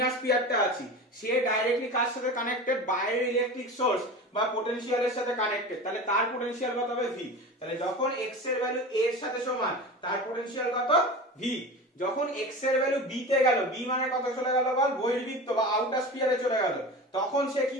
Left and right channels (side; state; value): both; normal; correlation 0.31